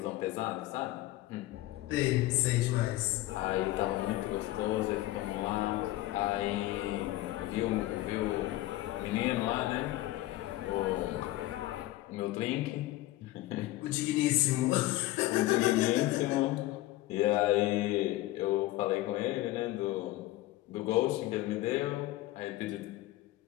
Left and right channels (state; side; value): quieter; right; 16.9 dB